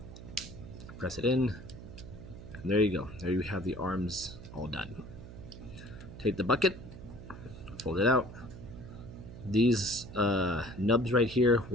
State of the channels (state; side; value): noise; right; hum, 14 dB below the sound